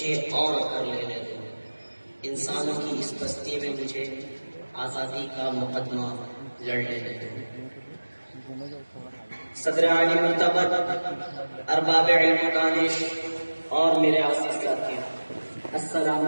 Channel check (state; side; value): inverted; both; correlation -1.00